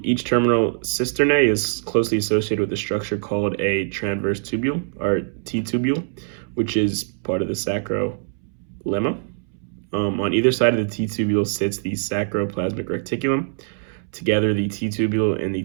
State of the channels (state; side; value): silent; left; 64 dB below the other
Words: Each terminal cisternae is closely associated with a structure called a transverse tubule, or T-tubule, which is part of the sacrolemma. On either side of the T-tubule sits the sarcoplasmic reticulum. Together, the T-tubule and the